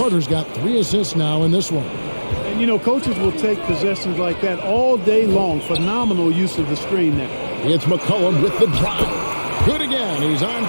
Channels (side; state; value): both; inverted; correlation -1.00